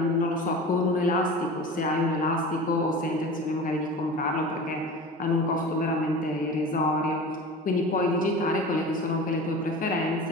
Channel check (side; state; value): both; normal; correlation 0.34